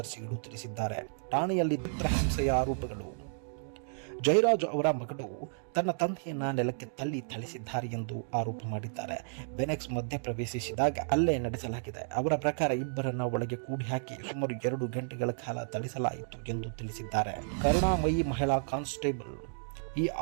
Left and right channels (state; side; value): silent; left; digital silence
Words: ತಿಳಿಸಿದ್ದಾರೆ. ಠಾಣೆಯಲ್ಲಿ ಚಿತ್ರಹಿಂಸೆಯ ಆರೋಪಗಳು. ಜಯರಾಜ್ ಅವರ ಮಗಳು ತನ್ನ ತಂದೆಯನ್ನ ನೆಲಕ್ಕೆ ಥಳಿಸಿದ್ದಾರೆ ಎಂದು ಆರೋಪ ಮಾಡಿದ್ದಾರೆ. ಬೆನೆಕ್ಸ್ ಮಧ್ಯ ಪ್ರವೇಶಿಸಿದಾಗ ಹಲ್ಲೆ ನಡೆಸಲಾಗಿದೆ. ಅವರ ಪ್ರಕಾರ ಇಬ್ಬರನ್ನ ಒಳಗೆ ಕೂಡಿ ಹಾಕಿ ಸುಮಾರು 2 ಗಂಟೆಗಳ ಕಾಲ ಥಳಿಸಲಾಯಿತು ಎಂದು ತಿಳಿಸಿದ್ದಾರೆ. ಕರುಣಾಮಯಿ ಮಹಿಳಾ ಕಾನ್ಸ್ಟೇಬಲ್ ಈ